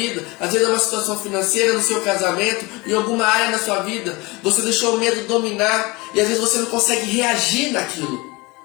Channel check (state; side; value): quieter; right; 24.3 dB